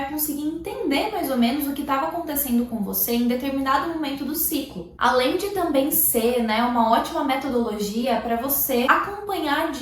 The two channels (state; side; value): identical; both; correlation 1.00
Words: conseguir entender mais ou menos o que estava acontecendo com você em determinado momento do ciclo. Além de também ser, uma ótima metodologia para você acompanhar